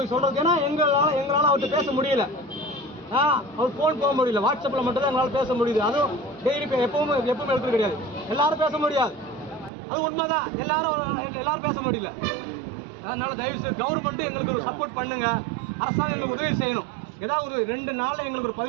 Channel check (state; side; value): drops out; left; at 9.7 s